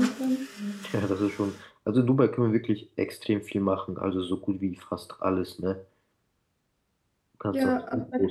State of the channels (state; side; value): identical; both; correlation 1.00